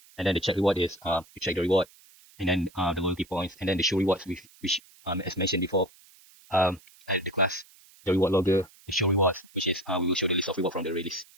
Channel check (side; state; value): right; noise; hiss, 26 dB below the sound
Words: And then the check reward is you check the reward, and then the loyalty points, and then the show rewards, which as mentioned before, and the class, the reward logger, the show rewards, which is we will show the list of reward from the release,